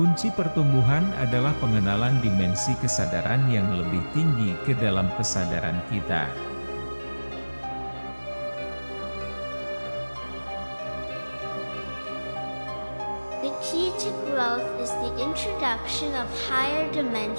pertumbuhan adalah pengenalan dimensi kesadaran yang lebih tinggi ke dalam kesadaran kita. The key to growth is the introduction of higher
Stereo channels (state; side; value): inverted; both; correlation -1.00